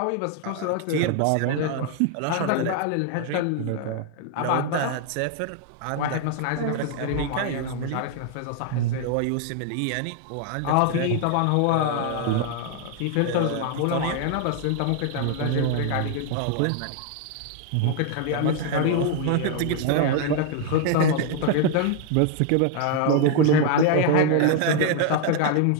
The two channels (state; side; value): different; both; correlation 0.00